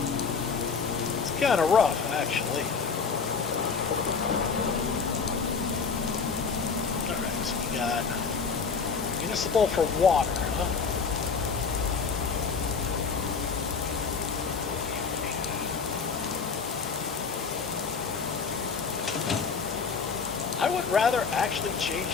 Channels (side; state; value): right; quieter; 5.4 dB